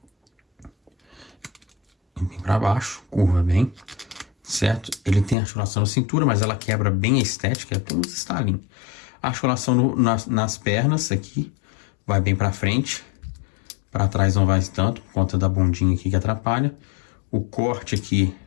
Bem para baixo, curva bem, certo? Ele tem articulação na cintura, mas ela quebra bem a estética, tem uns estalinhos. A articulação nas pernas aqui. Vai bem pra frente, pra trás não vai tanto, por conta da bundinha aqui que atrapalha. O corte aqui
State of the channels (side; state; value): right; drops out; at 5.4 s